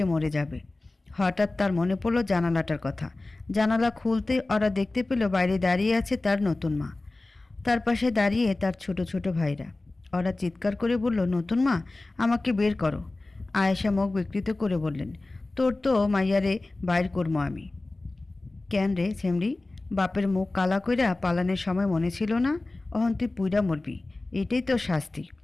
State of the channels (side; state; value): right; quieter; 3.0 dB